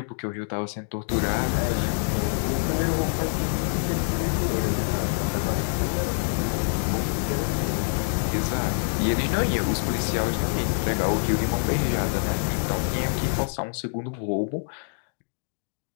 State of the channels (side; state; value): right; silent; digital silence